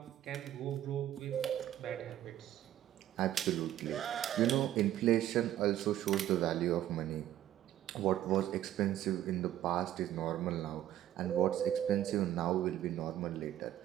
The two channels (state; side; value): quieter; left; 12.3 dB